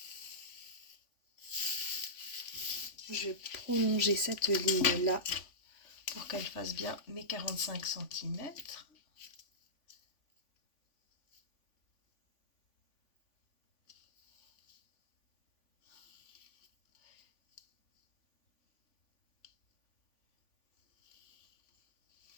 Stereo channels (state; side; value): late; right; 3.5 ms